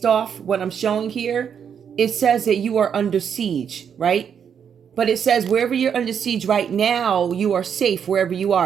off what I'm showing here. It says that you are under siege, right? But it says wherever you're under siege right now, you are safe wherever you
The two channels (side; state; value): left; quieter; 7.7 dB